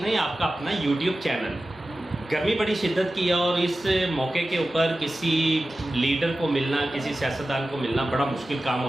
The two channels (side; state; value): both; normal; correlation 0.94